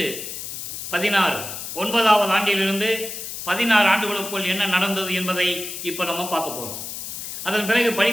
9வது ஆண்டிலிருந்து 16 ஆண்டுகளுக்குள் என்ன நடந்தது என்பதை இப்போ நம்ம பார்க்க போகிறோம். அதன் பிறகு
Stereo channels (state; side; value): noise; left; hiss, 8 dB below the sound